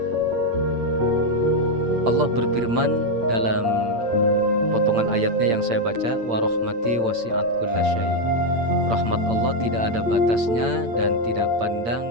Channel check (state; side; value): late; left; 8.7 ms